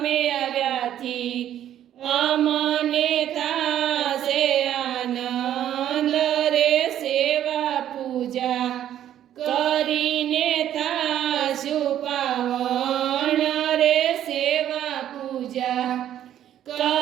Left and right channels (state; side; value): quieter; left; 11.2 dB